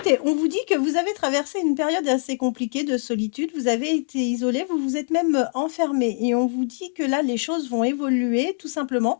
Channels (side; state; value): right; silent; 57 dB below the other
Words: on vous dit que vous avez traversé une période assez compliquée de solitude, vous avez été isolé, vous vous êtes même enfermé et on vous dit que là les choses vont évoluer tout simplement